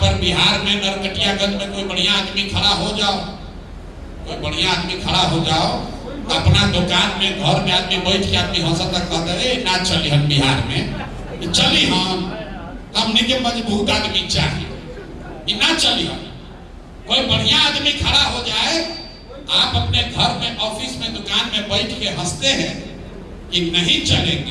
पर बिहार में नरकटियागंज में कोई बढ़िया आदमी खड़ा हो जाओ, कोई बढ़िया आदमी खड़ा हो जाओ, अपना दुकान में घर में आदमी बैठ के आदमी हंसता कहता है ना चली हम बिहार में चली हमने के मजबूत आदमी चाहिए, ना चली हम। कोई बढ़िया आदमी खड़ा हो जाए, आप अपने घर में ऑफिस में दुकान में बैठ के हंसते हैं कि नहीं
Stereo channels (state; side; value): identical; both; correlation 1.00